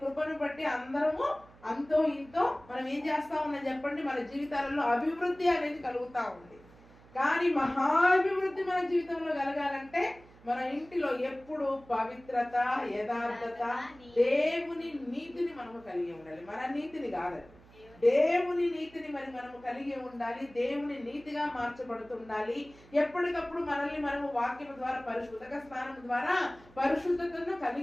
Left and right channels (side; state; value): right; noise; hum, 24 dB below the sound